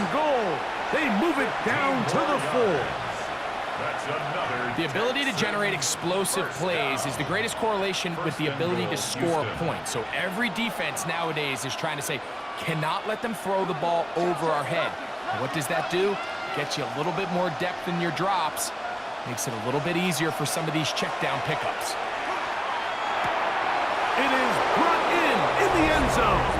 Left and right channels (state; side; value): identical; both; correlation 1.00